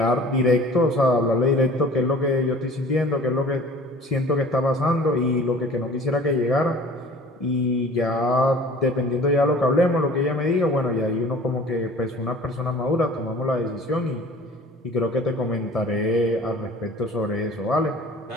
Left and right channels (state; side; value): normal; both; correlation 0.46